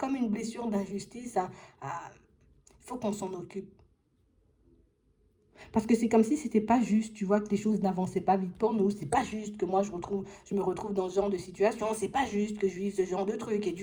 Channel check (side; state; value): both; identical; correlation 1.00